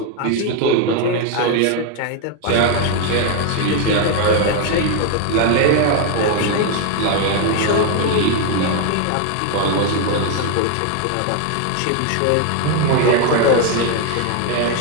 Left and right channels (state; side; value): different; both; correlation 0.01